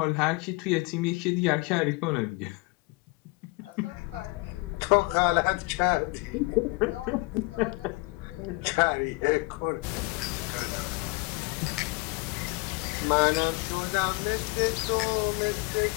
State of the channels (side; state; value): right; quieter; 26.0 dB